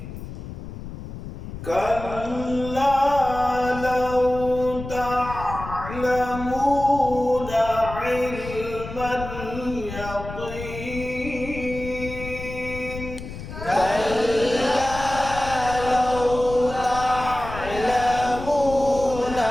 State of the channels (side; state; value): left; noise; rumble, 10 dB below the sound